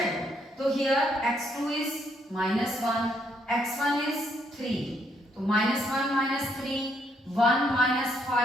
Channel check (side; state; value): both; normal; correlation 0.73